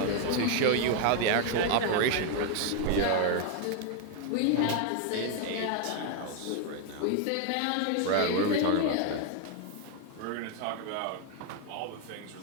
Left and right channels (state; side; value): different; both; correlation 0.01